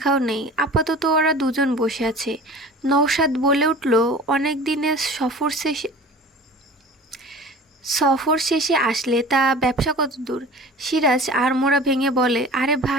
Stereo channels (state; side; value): normal; both; correlation 0.41